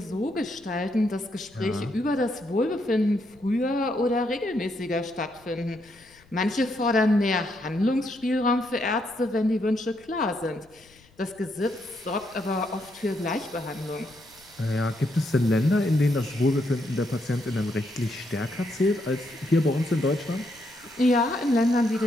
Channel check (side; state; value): left; noise; rumble, 29 dB below the sound